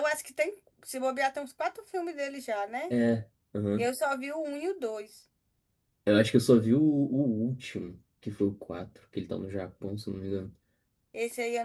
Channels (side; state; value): both; identical; correlation 1.00